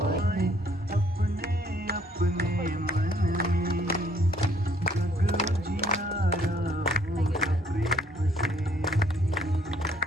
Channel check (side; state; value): both; normal; correlation 0.64